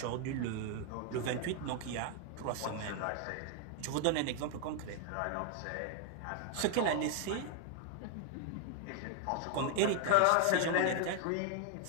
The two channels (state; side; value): different; both; correlation 0.00